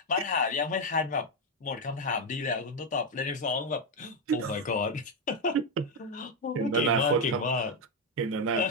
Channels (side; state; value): both; normal; correlation 0.05